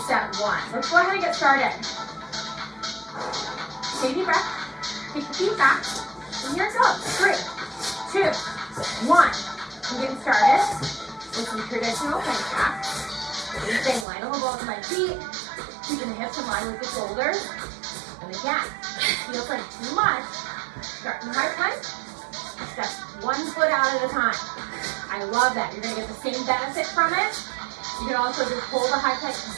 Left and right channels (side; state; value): left; drops out; at 14.1 s